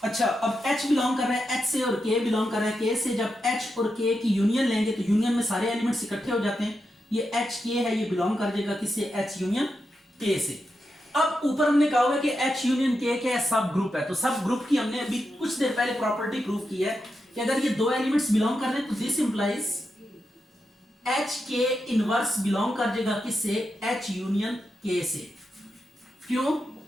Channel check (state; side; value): normal; both; correlation 0.87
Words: अब H बिलोंग कर रहा है H से और K बिलोंग कर रहा है K से। जब H और K की यूनियन लेंगे तो यूनियन में सारे एलिमेंट्स इकट्ठे हो जाते हैं। ये H K है, ये बिलोंग कर जाएगा किससे, H यूनियन K से। अब ऊपर हमने कहा हुआ कि H यूनियन K क्या है, सब ग्रुप है। तो सब ग्रुप की हमने अभी कुछ देर पहले प्रॉपर्टी प्रूव की है कि अगर ये दो एलिमेंट्स बिलोंग कर रहे हैं तो this implies H K inverse belong कर जाएगा किससे, H यूनियन K से। क्यों,